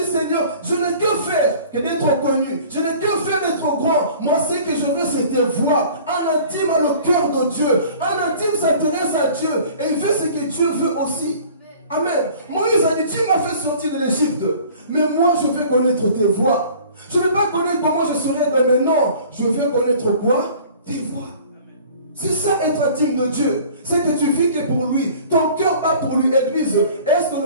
Seigneur, je n'ai que faire que d'être connu. Je n'ai que faire d'être grand. Moi, ce que je veux, c'est tes voix. Un intime a le cœur de Dieu. Un intime s'intéresse à Dieu. Et il veut ce que Dieu veut aussi. Amen. Moïse a dit, tu m'as fait sortir de l'Égypte. Mais moi, je veux connaître tes voix. Je ne veux pas connaître comment je serai demain. Non, je veux connaître quoi? Tes voix. C'est ça être intime de Dieu. C'est que tu vis que pour lui. Ton cœur bat pour lui, Église. Est-ce que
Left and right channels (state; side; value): inverted; both; correlation -0.48